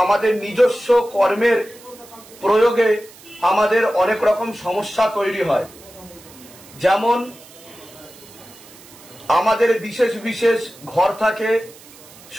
আমাদের নিজস্ব কর্মের প্রয়োগে আমাদের অনেক রকম সমস্যা তৈরি হয়। যেমন আমাদের বিশেষ বিশেষ ঘর থাকে,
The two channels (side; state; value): right; noise; hiss, 22 dB below the sound